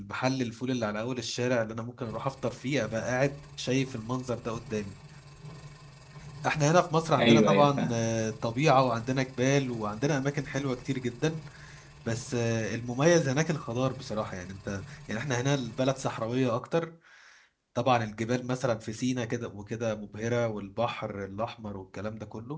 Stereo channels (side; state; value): both; identical; correlation 1.00